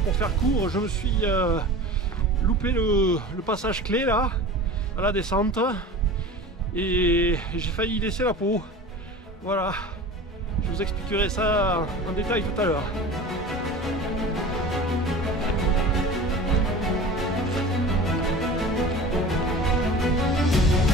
Pour faire court, je me suis loupé le passage clé là, à la descente, et j'ai failli laisser la peau. Voilà, je vous expliquerai ça en détail tout à l'heure.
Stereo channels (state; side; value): normal; both; correlation 0.36